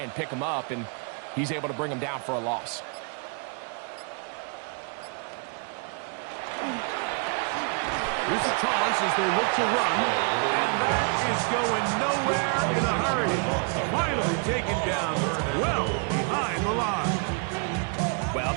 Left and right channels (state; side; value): quieter; left; 38.4 dB